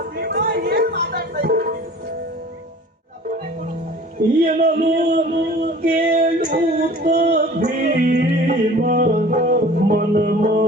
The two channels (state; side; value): normal; both; correlation 0.45